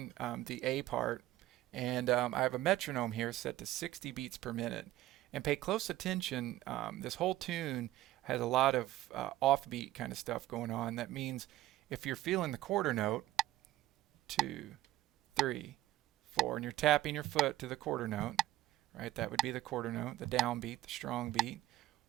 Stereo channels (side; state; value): left; quieter; 15.3 dB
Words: the A part, and I have a metronome here set to 60 beats per minute. And pay close attention, this whole tune has a lot of offbeat kind of stuff going on. That means if you're feeling the quarter note, 2, 3, 4, and you're tapping your foot to the quarter note, right? That would be the quarter note, the downbeat, the strong beat.